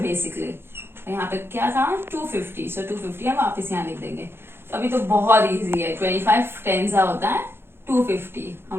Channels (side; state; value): left; late; 0.11 ms